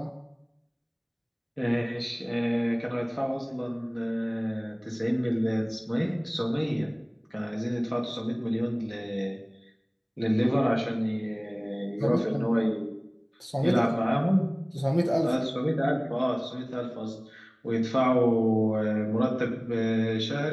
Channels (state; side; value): identical; both; correlation 1.00